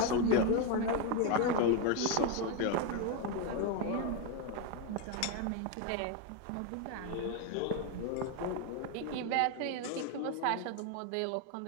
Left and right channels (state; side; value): different; both; correlation 0.02